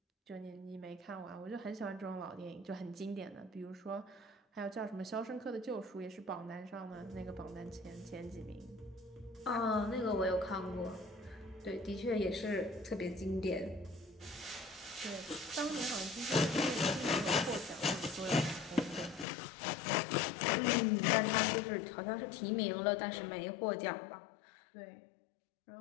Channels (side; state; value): right; drops out; at 19.2 s